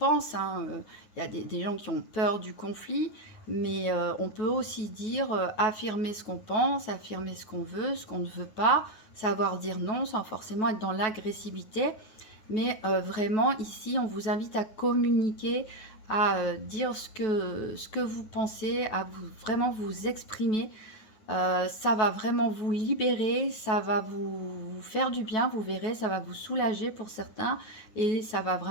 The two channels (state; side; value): late; right; 9.2 ms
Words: hein. Il y a des gens qui ont peur du conflit, mais on peut aussi dire affirmer ce qu'on pense, affirmer ce qu'on veut, ce qu'on ne veut pas, savoir dire non sans forcément être dans l'agressivité. Mais vraiment, ici, on vous invite à communiquer, à dire ce que vous pensez, à vraiment vous exprimer. Ça va vraiment vous libérer, ça va vous faire du bien, vous verrez, ça va vous soulager pour certains et ça va